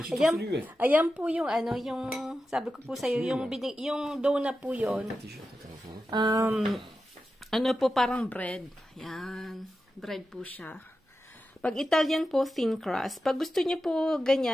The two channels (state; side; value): normal; both; correlation 0.91